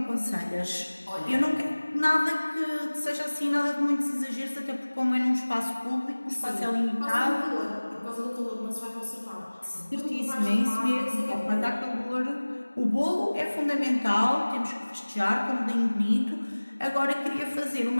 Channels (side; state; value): both; inverted; correlation -1.00